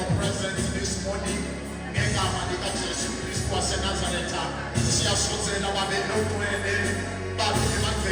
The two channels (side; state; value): both; identical; correlation 1.00